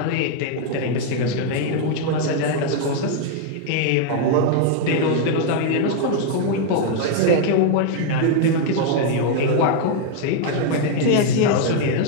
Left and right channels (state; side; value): different; both; correlation 0.00